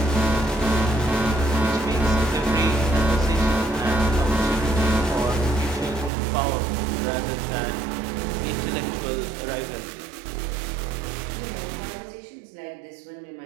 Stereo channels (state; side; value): drops out; left; at 6.1 s